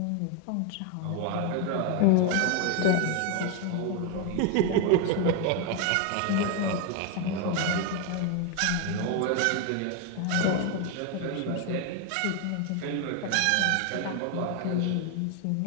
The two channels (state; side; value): different; both; correlation 0.01